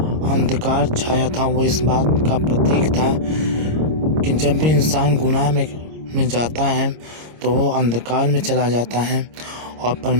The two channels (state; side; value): late; left; 26 ms